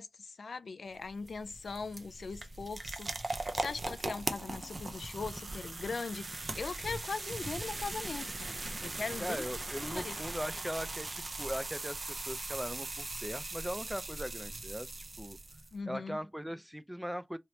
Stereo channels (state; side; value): normal; both; correlation 0.94